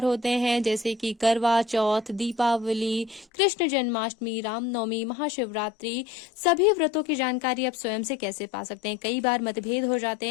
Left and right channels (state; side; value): drops out; right; at 3.2 s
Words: होते हैं, जैसे कि करवा चौथ, दीपावली, कृष्ण जन्माष्टमी, रामनवमी, महाशिवरात्रि। सभी व्रतों की जानकारी आप स्वयं से कैसे पा सकते हैं। कई बार मतभेद हो